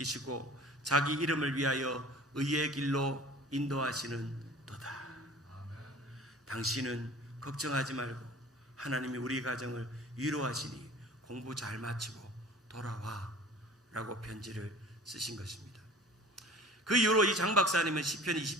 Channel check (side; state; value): both; normal; correlation 0.44